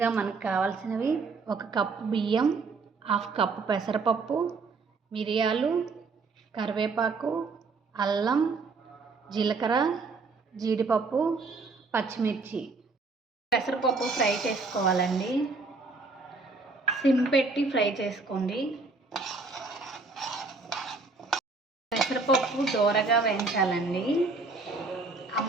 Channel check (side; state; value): left; quieter; 4.0 dB